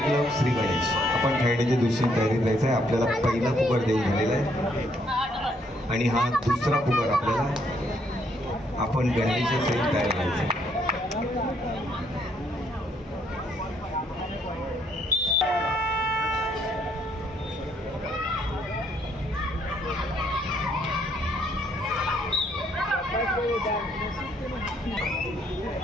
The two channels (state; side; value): normal; both; correlation 0.70